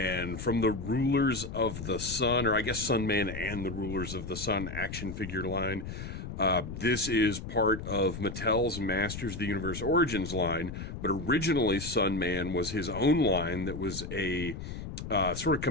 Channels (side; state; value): left; noise; rumble, 8 dB below the sound